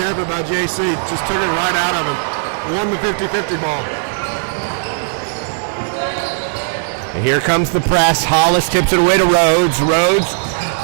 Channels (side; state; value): left; silent; digital silence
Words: by JC. Just took it right out of him. Won the 50-50 ball. And here comes the press. Hollis tips it away to Rhodes. Rhodes